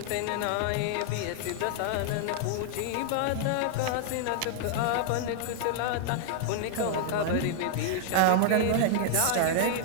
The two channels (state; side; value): different; both; correlation -0.01